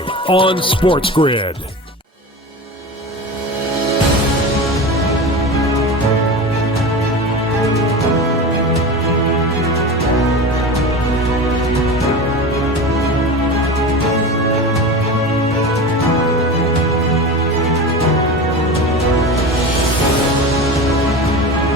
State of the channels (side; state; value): both; normal; correlation 0.28